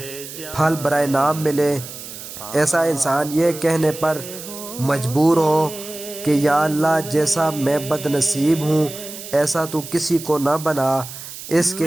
پھل برائے نام ملے، ایسا انسان یہ کہنے پر مجبور ہو کہ یا اللہ جیسا میں بد نصیب ہوں ایسا تو کسی کو نہ بنا، اس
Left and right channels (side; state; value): right; noise; hiss, 12 dB below the sound